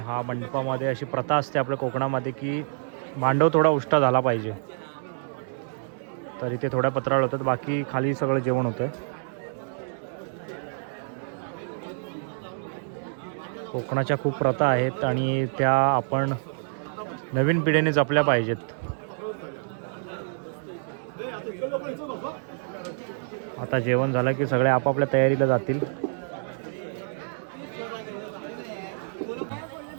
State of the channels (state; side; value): silent; left; digital silence